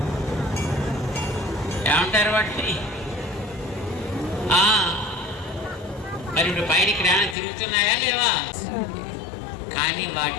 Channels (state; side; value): drops out; right; at 7.4 s